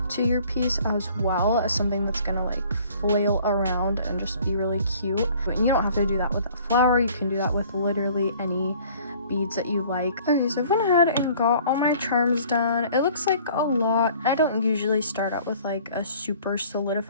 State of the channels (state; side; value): inverted; both; correlation -0.53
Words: to your piece as well as something that's gonna like flail around and just be really cute. But you don't have to do that with a flower, you can do that with literally any beads that you like. Okay, so I went ahead and got all my charms done. It looks like a lot. I don't usually start out with like a super